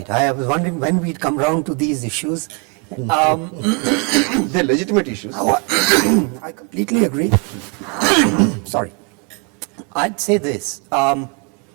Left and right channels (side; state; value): left; quieter; 35.2 dB